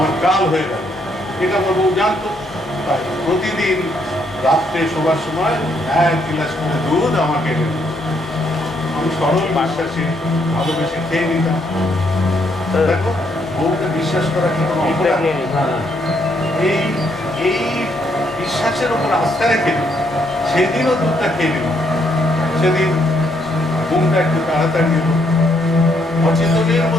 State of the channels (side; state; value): both; normal; correlation 0.73